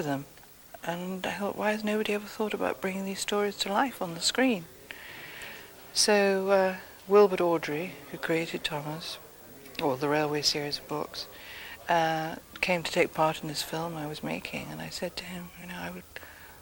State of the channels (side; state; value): both; identical; correlation 1.00